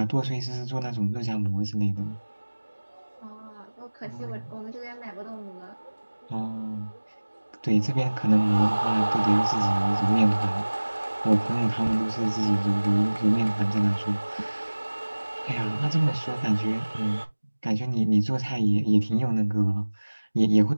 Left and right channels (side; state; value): both; inverted; correlation -1.00